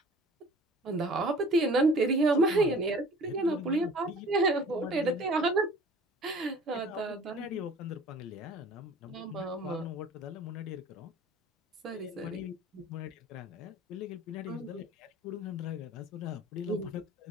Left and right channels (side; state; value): both; normal; correlation 0.47